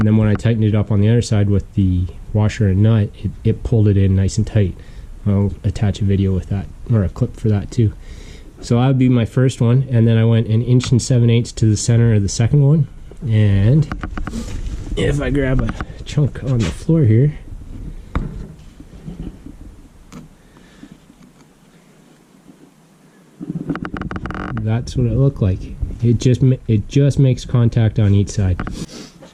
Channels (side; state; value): both; identical; correlation 1.00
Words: then when I tightened it up on the other side with the washer and nut, it pulled it in nice and tight. I'll attach a video with that, or a clip for that too. So that would be my first one, and then I went 1 7/8 inches to the center of the second one. And if I grab a chunk on the floor here, that's what it looked like. It just makes contact on each side.